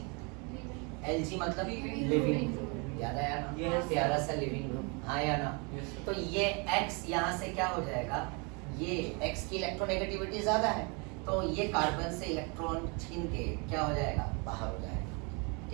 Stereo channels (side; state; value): left; quieter; 32.2 dB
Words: Lg मतलब लिविंग, याद आया ना? Yes. प्यारा सा लिविंग ग्रुप, हाँ या ना? तो ये X यहाँ से क्या हो जाएगा? ये X की इलेक्ट्रोनेगेटिविटी ज्यादा है, तो ये कार्बन से इलेक्ट्रॉन छीन के क्या हो जाएगा? बाहर हो जाएगा,